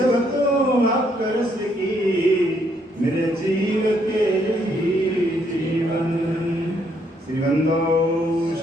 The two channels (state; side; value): normal; both; correlation 0.71